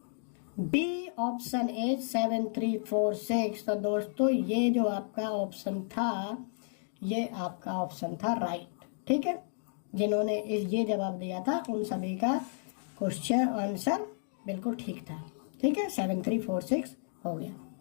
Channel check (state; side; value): silent; right; digital silence